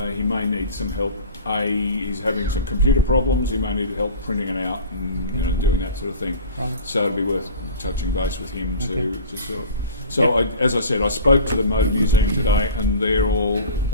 he may need some help. He's having some computer problems. He may need help printing it out and doing that sort of thing. Right. So it'd be worth touching base with him Okay. to sort of. So as I said, I spoke to the Motor Museum today, and they're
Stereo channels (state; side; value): inverted; both; correlation -0.39